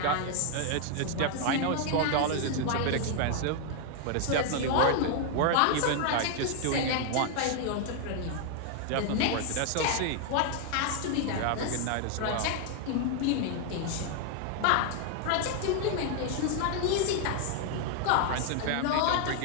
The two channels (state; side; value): different; both; correlation 0.00